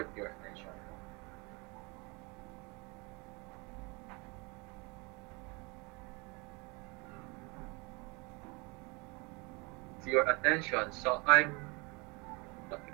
your attention. It's your attention. So I'm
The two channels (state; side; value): quieter; left; 28.4 dB